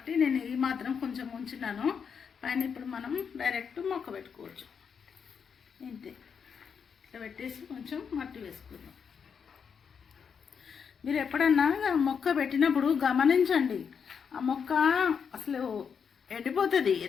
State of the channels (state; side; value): quieter; right; 6.7 dB